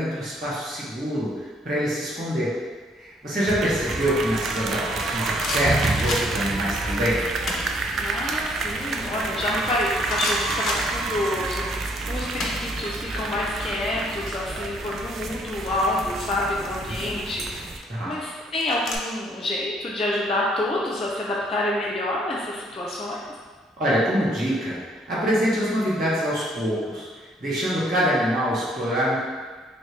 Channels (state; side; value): normal; both; correlation 0.64